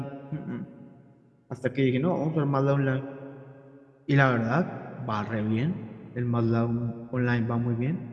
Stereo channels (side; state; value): both; identical; correlation 1.00